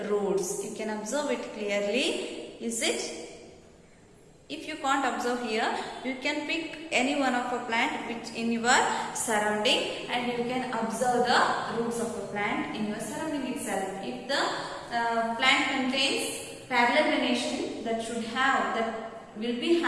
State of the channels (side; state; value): both; identical; correlation 1.00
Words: roots. You can observe it clearly. Is it? If you can't observe here, you can pick any one of a plant which in your surrounding, and you can observe the roots of the plant in your surrounding plant contains parallel venation that will be